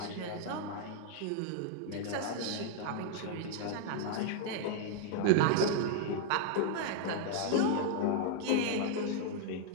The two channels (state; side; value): different; both; correlation 0.00